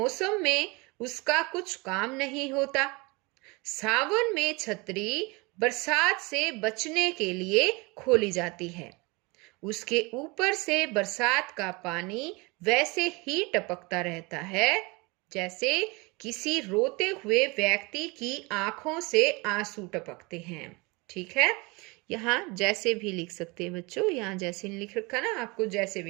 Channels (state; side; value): quieter; left; 26.5 dB